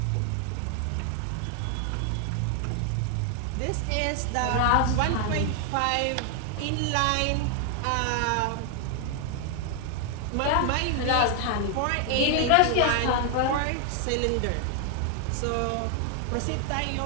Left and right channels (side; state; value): both; different; correlation 0.00